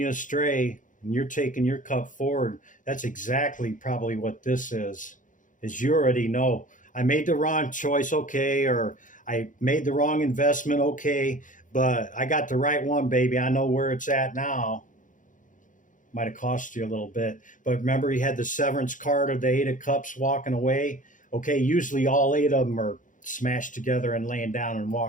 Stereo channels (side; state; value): right; late; 0.38 ms